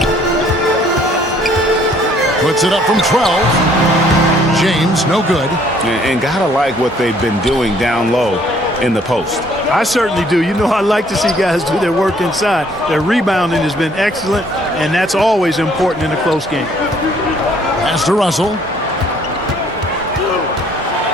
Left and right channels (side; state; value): both; normal; correlation 0.61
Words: Puts it up from 12. James, no good. And gotta like what they've been doing down low in the post. I certainly do. You know, I like to see guys do their work inside. Their rebounding has been excellent, and that's always important in a close game. Pass to Russell.